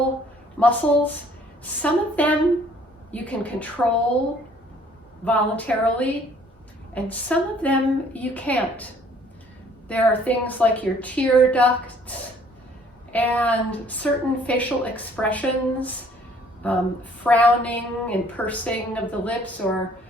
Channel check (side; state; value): both; normal; correlation 0.59